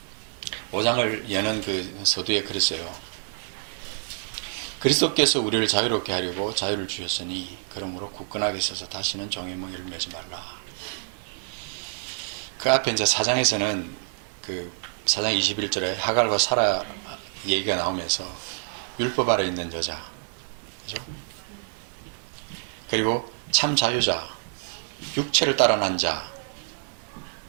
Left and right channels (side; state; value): left; silent; 60 dB below the other